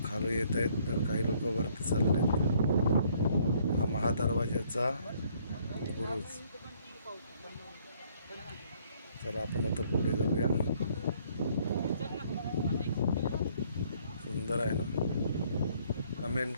खाली येत आहेत तर काही लोक वरती चाललेत. हा महादरवाजाचा बुरुज. चला आपण आता पुढे जाऊया. सुंदर आहे ना. कमेंट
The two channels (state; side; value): inverted; both; correlation -0.64